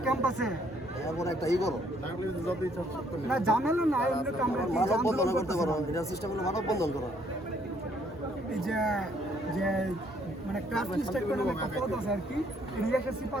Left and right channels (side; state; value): both; normal; correlation 0.66